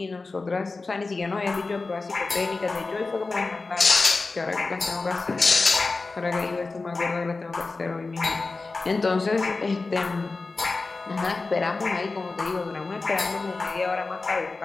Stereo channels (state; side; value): quieter; right; 3.7 dB